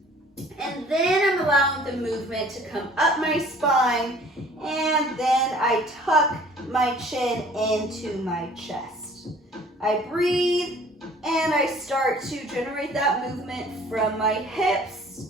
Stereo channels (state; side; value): normal; both; correlation 0.52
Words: and then I'm allowing the movement to come up my spine, and then I tuck my chin into my chest. I breathe, and I start to generate that movement from my hips,